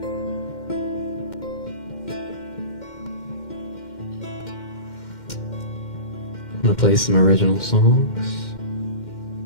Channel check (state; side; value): late; right; 2.1 ms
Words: I'm gonna play some original songs.